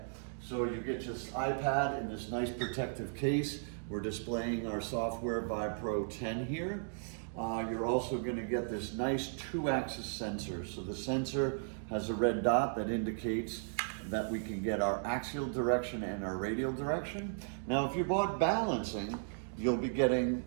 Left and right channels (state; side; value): silent; left; digital silence